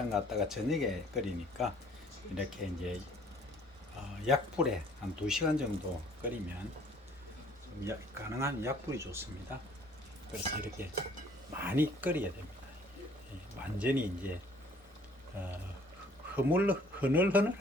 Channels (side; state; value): both; normal; correlation 0.57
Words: 갔다가 저녁에 끓이니까 이렇게 이제 약불에 한 2시간 정도 끓이면 가능한 약불이 좋습니다. 그래서 이렇게 많이 끓여야 됩니다. 완전히 이제 흐물흐늘